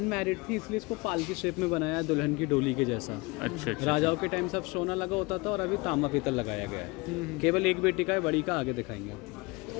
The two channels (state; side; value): quieter; right; 25.5 dB